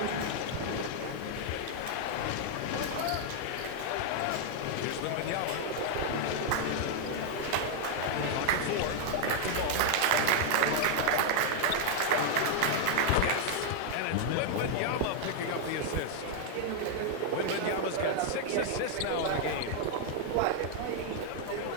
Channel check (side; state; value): both; different; correlation 0.00